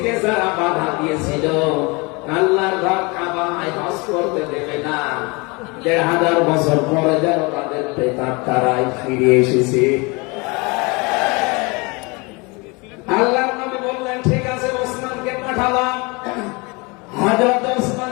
যারা বাধা দিয়েছিল আল্লাহর ঘর কাবায় হজ করতে দেবে না, 1500 বছর পরে যেন তাদের প্রেতাত্মারাই ফিরে এসেছে। আল্লাহর নবী বললেন, ঠিক আছে, ওসমানকে পাঠালাম। হযরত ওসমান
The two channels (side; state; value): right; quieter; 27.6 dB